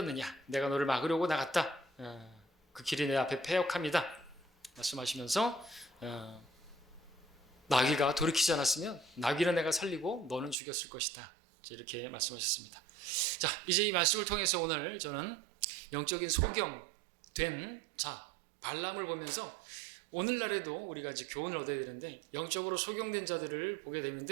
내가 너를 막으려고 나갔다, 그 길이 내 앞에 패역합니다 말씀하시면서 나귀가 돌이키지 않았으면 나귀는 내가 살리고 너는 죽였을 것이다 이렇게 말씀하셨습니다. 자, 이제 이 말씀을 통해서 오늘 저는 영적인 소경된 자 발람을 보면서 오늘날에도 우리가 이제 교훈을 얻어야 되는데 영적으로 소경된 자들을 보게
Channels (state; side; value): drops out; left; at 10.6 s